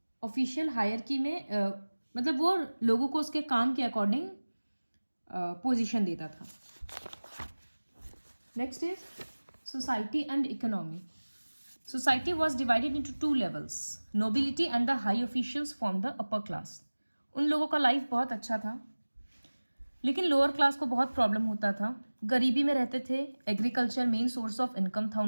Official hierarchy में मतलब वो लोगों को उसके काम के अकॉर्डिंग पोजीशन देता था। Next is society and economy. Society was divided into two levels. Nobility and the high officials formed the upper class. उन लोगों का लाइफ बहुत अच्छा था, लेकिन लोअर क्लास को बहुत प्रॉब्लम होता था, गरीबी में रहते थे। Agriculture main source of income था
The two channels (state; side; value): inverted; both; correlation -1.00